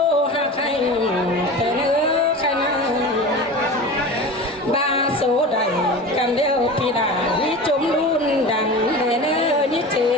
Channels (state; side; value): normal; both; correlation 0.32